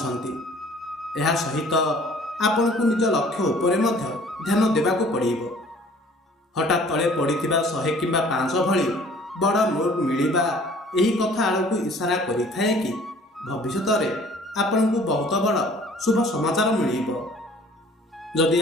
ଏହା ସହିତ ଆପଣଙ୍କୁ ନିଜ ଲକ୍ଷ୍ୟ ଉପରେ ମଧ୍ୟ ଧ୍ୟାନ ଦେବାକୁ ପଡ଼ିବ। ହଠାତ୍ ତଳେ ପଡ଼ିଥିବା 100 କିମ୍ବା 500 ଭଳି ବଡ଼ ନୋଟ୍ ମିଳିବା ଏହି କଥା ଆଡ଼କୁ ଇସାରା କରିଥାଏ କି ଭବିଷ୍ୟତରେ ଆପଣଙ୍କୁ ବହୁତ ବଡ଼ ଶୁଭ ସମାଚାର ମିଳିବ। ଯଦି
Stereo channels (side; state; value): both; normal; correlation 0.53